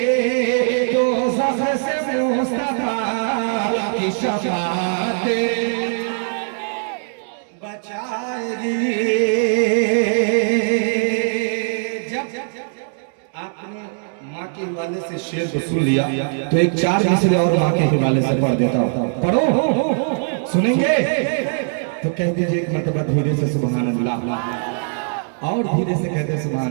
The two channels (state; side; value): silent; left; 65 dB below the other